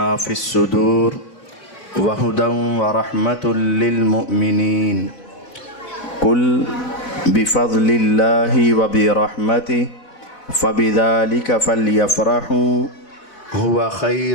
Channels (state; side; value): late; right; 4.0 ms